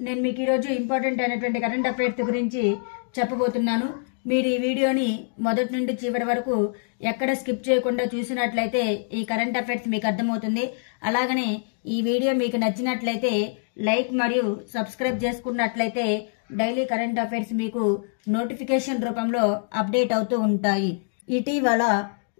నేను మీకు ఈరోజు ఇంపార్టెంట్ అయినటువంటి కరెంట్ అఫైర్స్ గురించి చెప్పబోతున్నాను. మీరు ఈ వీడియోని మొదటి నుండి చివరి వరకు ఎక్కడ స్కిప్ చేయకుండా చూసినట్లయితే ఈ కరెంట్ అఫైర్స్ మీకు అర్థమవుతుంది. అలాగనే ఈ వీడియో మీకు నచ్చినట్లయితే లైక్ మరియు సబ్స్క్రైబ్ చేసుకున్నట్లయితే డైలీ కరెంట్ అఫైర్స్ మీకు నోటిఫికేషన్ రూపంలో అప్డేట్ అవుతూ ఉంటాయి. ఇటీవల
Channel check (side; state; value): right; silent; digital silence